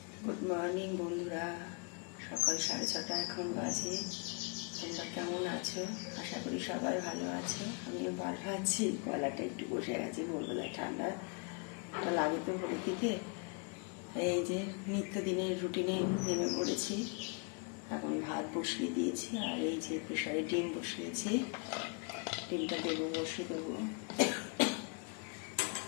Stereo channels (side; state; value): right; quieter; 34.8 dB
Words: Good morning বন্ধুরা, সকাল 6:30 এখন বাজে। তোমরা কেমন আছো? আশা করি সবাই ভালো আছে। আমিও ভালো আছি। গলাটা একটু বসে গেছে, ভোরবেলায় ঠান্ডা লাগে তো ভোরের দিকে। এই যে নিত্যদিনের রুটিনে নেমে পড়েছি। এখন ভাত বসিয়ে দিয়েছি, আর এই যে প্রেসারে ডিম বসিয়েছি। ডিমটা দেবো, বসিয়ে দেবো।